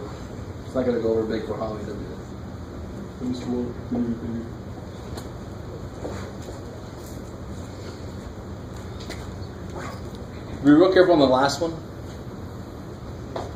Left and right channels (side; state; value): both; identical; correlation 1.00